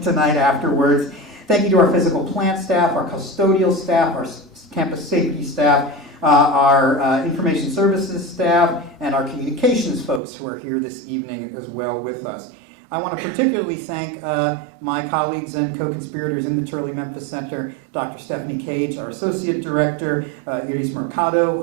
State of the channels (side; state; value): left; drops out; at 10.2 s